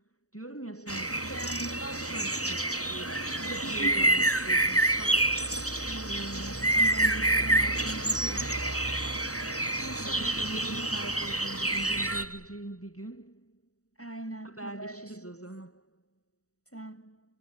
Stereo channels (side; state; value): right; late; 0.66 ms